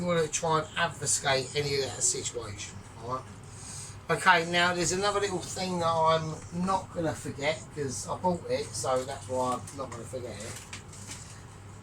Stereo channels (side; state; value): both; identical; correlation 1.00